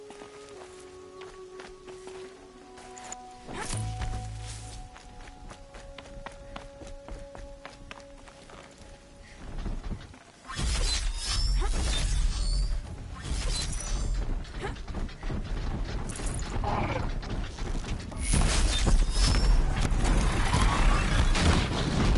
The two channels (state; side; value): identical; both; correlation 1.00